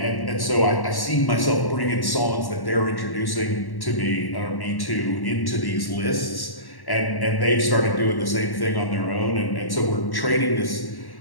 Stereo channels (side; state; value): right; late; 1.1 ms